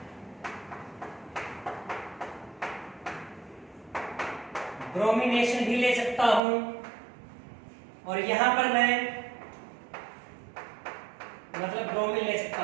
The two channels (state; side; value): drops out; left; at 6.4 s